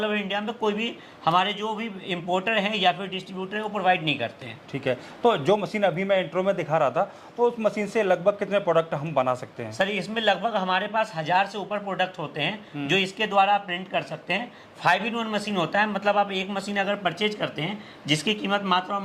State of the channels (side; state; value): both; identical; correlation 1.00